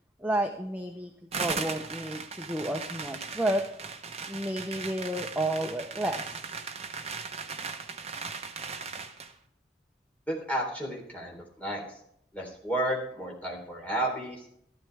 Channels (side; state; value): both; normal; correlation 0.50